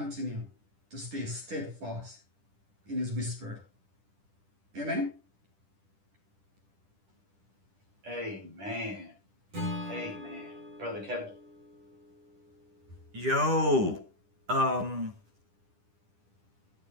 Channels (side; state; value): left; late; 10 ms